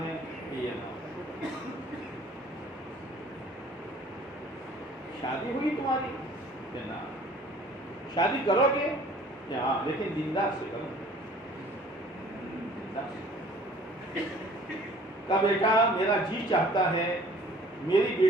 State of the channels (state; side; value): normal; both; correlation 0.52